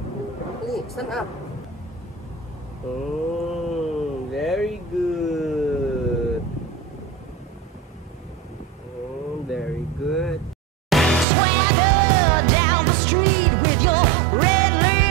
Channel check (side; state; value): left; drops out; at 11.2 s